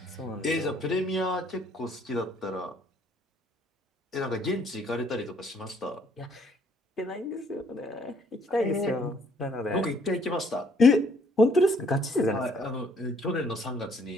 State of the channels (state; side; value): normal; both; correlation 0.64